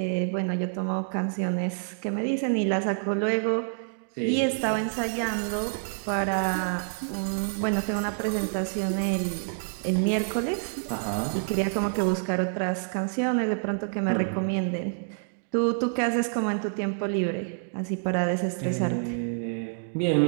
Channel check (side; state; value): left; silent; digital silence